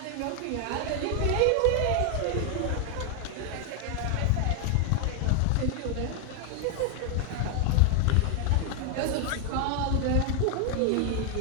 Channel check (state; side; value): different; both; correlation 0.00